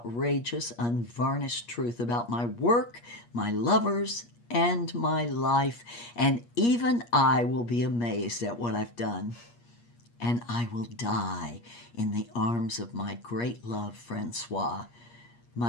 unvarnished truth about my work, my lovers, and my life. And even I will be amazed at what I've done. And I will die in the arms of my great love, Francois,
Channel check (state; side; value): late; right; 8.4 ms